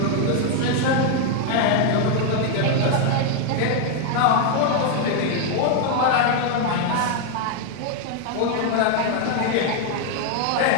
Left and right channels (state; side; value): different; both; correlation 0.00